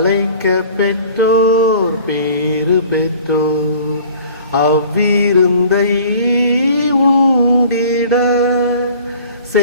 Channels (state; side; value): inverted; both; correlation -0.48